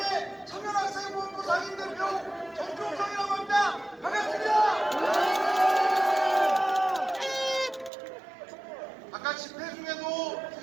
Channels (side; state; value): left; drops out; at 7.9 s